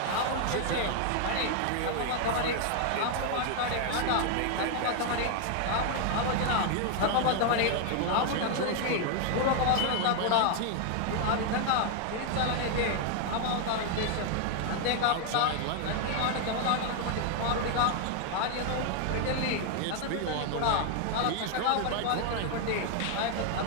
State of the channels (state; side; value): different; both; correlation 0.00